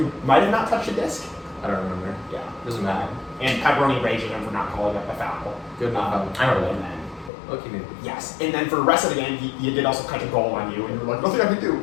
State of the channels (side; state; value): right; drops out; at 7.3 s